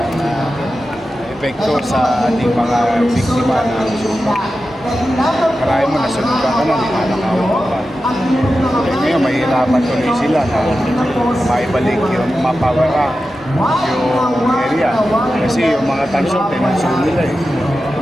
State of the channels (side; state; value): both; normal; correlation 0.92